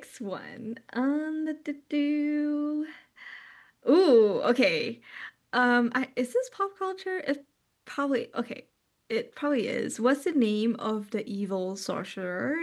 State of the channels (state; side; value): identical; both; correlation 1.00